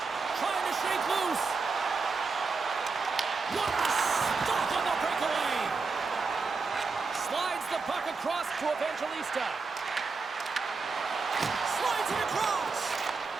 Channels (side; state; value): left; quieter; 4.4 dB